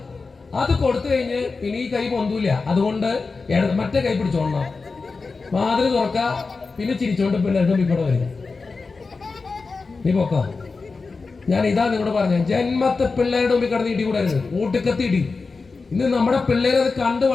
അത് കൊടുത്തു കഴിഞ്ഞ് ഇനി ഈ കൈ പൊന്തൂല, അതുകൊണ്ട് മറ്റേ കൈ പിടിച്ചോളണം. വാതിൽ തുറക്ക, പിന്നെ ചിരിച്ചോണ്ട് പിള്ളേരുടെ ഇവിടെ വരിക. നീ പൊക്കോ. ഞാൻ ഇതാ നിങ്ങളോട് പറഞ്ഞ, ജന്മത്തെ പിള്ളേരുടെ മുമ്പിൽ കിടന്ന് ഇടി കൂടരുത്, ഊട്ടുക്കത്തി ഇടി. ഇന്ന് നമ്മുടെ പിള്ളേരെ അത് കണ്ടു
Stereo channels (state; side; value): quieter; right; 4.2 dB